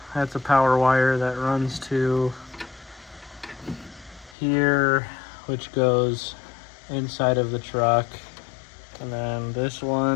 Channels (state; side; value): drops out; right; at 4.4 s